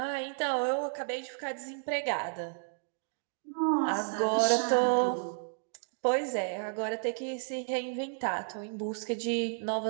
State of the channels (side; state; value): left; silent; digital silence